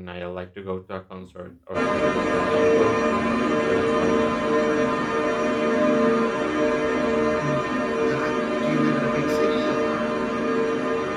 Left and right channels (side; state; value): both; identical; correlation 1.00